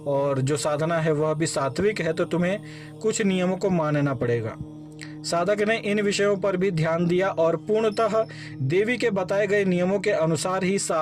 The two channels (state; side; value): identical; both; correlation 1.00